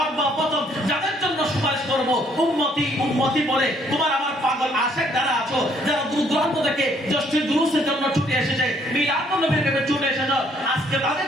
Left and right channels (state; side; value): normal; both; correlation 0.66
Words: যাদের জন্য সুপারিশ করব উম্মতি উম্মতি বলে তোমার আমার পাগল আশিক যারা আছো যারা দূর দূরান্ত থেকে জশ্নের জুলুসের জন্য ছুটে এসেছে মিলাদুন নবীর কাছে ছুটে এসেছে আজকে তাদের